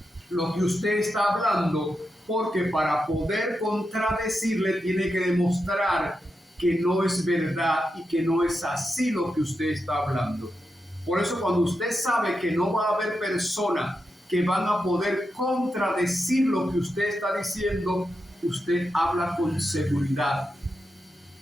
lo que usted está hablando, porque para poder contradecirle tiene que demostrar que no es verdad y que no es así lo que usted está hablando. Por eso, cuando usted sabe que no va a haber personas que van a poder contradecir lo que usted está diciendo, usted habla con seguridad,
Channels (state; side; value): normal; both; correlation 0.87